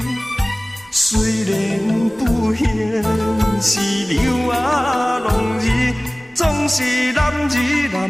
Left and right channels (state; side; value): normal; both; correlation 0.98